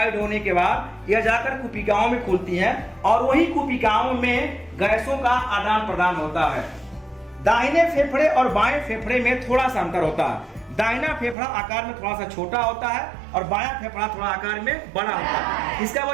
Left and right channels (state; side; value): drops out; left; at 11.4 s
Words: होने के बाद यह जाकर कुपिकाओं में खुलती है और वही कुपिकाओं में गैसों का आदान प्रदान होता है। दाहिने फेफड़े और बाएं फेफड़े में थोड़ा सा अंतर होता है। दाहिना फेफड़ा आकार में थोड़ा सा छोटा होता है और बायां फेफड़ा थोड़ा आकार में बड़ा होता है। इसका